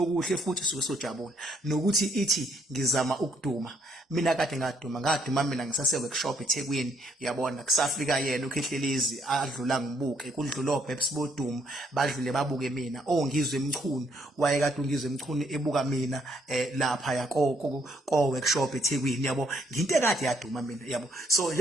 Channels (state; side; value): normal; both; correlation 0.69